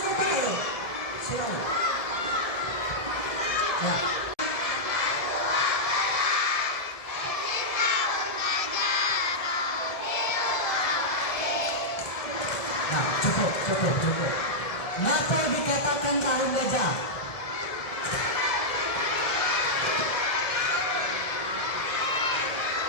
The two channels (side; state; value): right; late; 1.7 ms